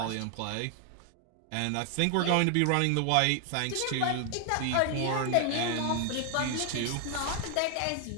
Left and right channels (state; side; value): different; both; correlation 0.00